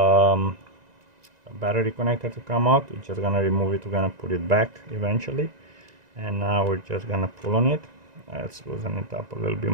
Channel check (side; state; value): left; late; 1.9 ms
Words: battery connector to come out. We're just gonna remove it. We're gonna put it back eventually, and now we're just gonna pull on it. Let's loosen it up a little bit